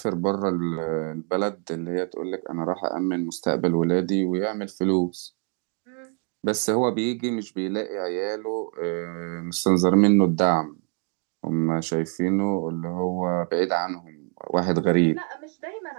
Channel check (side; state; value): left; quieter; 37.7 dB